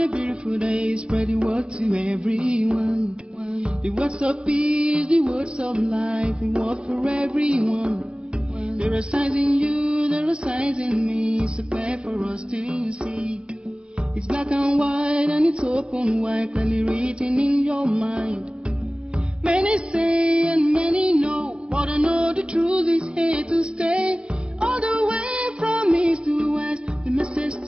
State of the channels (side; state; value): left; late; 0.052 ms